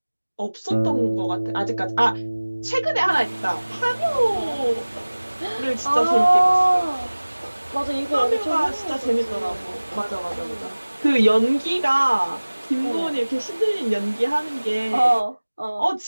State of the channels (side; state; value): both; inverted; correlation -1.00